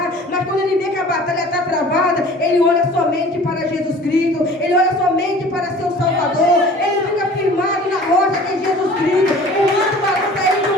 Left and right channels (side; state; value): both; normal; correlation 0.46